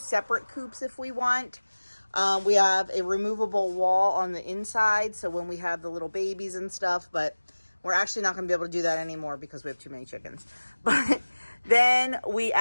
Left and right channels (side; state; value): both; inverted; correlation -1.00